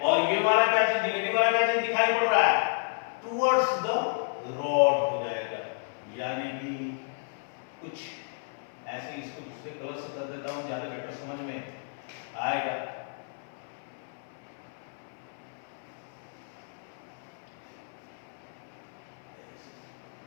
ये वाला क्या चीज, निगेटिव वाला क्या चीज दिखाई पड़ रहा है, टुवर्ड्स द रॉड हो जाएगा। यानी कि कुछ ऐसे, इसको दूसरे कलर से कर देता हूं, ज्यादा बेटर समझ में आएगा।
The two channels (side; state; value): right; silent; 57 dB below the other